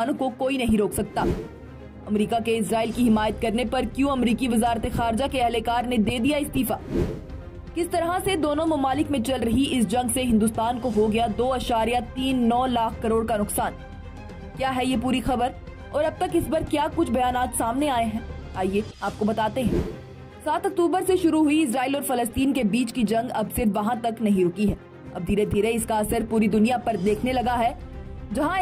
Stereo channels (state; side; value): identical; both; correlation 1.00